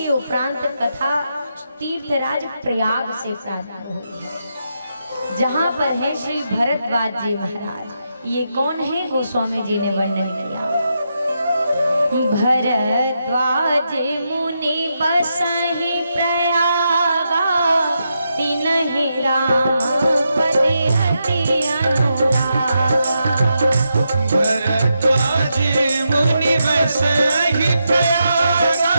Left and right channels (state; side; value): inverted; both; correlation -0.84